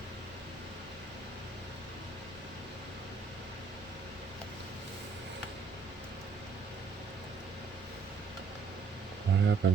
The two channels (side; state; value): left; quieter; 4.9 dB